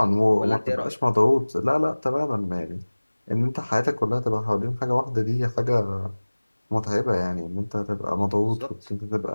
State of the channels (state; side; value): inverted; both; correlation -1.00